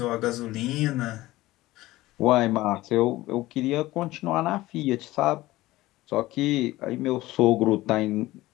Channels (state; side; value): quieter; right; 17.7 dB